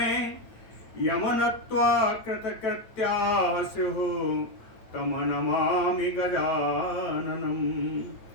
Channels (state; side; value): late; right; 9.1 ms